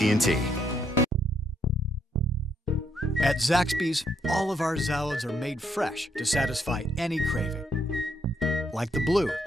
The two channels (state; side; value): normal; both; correlation 0.74